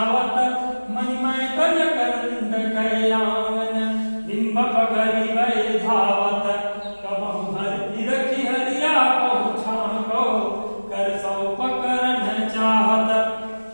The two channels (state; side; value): inverted; both; correlation -1.00